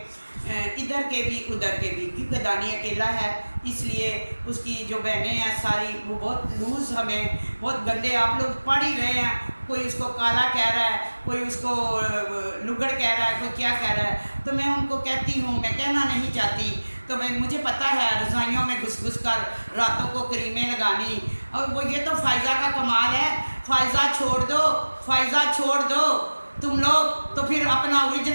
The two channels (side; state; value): both; inverted; correlation -1.00